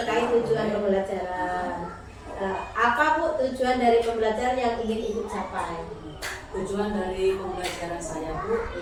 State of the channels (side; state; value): both; identical; correlation 1.00